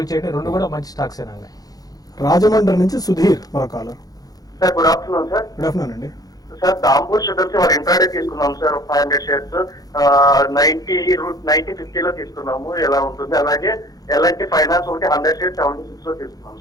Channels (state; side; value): late; right; 0.18 ms